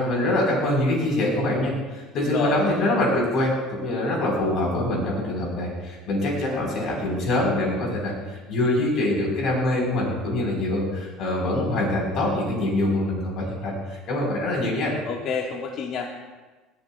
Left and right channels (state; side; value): normal; both; correlation 0.47